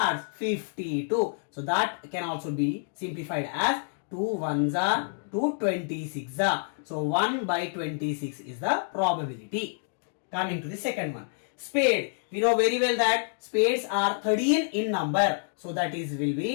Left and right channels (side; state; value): right; silent; digital silence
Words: 52. So that can also be simplified as 2 1s are 2 26s are. So 1 by 26 is the probability. Coming to the second one, spade. We know very well that spades are 13 in number. So that is will